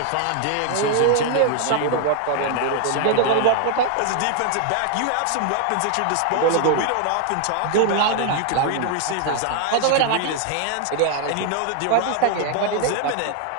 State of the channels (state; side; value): different; both; correlation 0.00